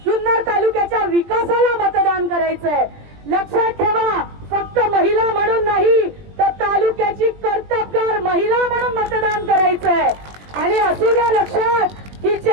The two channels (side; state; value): left; late; 20 ms